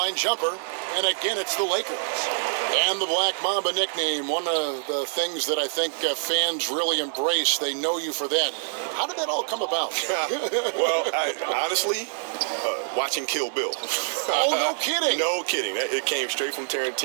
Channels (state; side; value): silent; left; digital silence